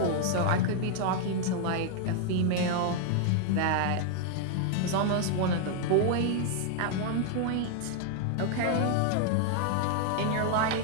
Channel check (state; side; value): different; both; correlation 0.00